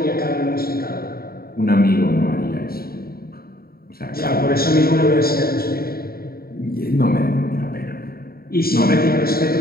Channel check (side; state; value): right; late; 0.44 ms